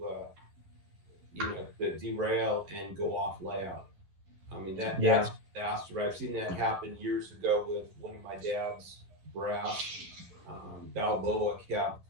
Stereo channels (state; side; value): late; left; 11 ms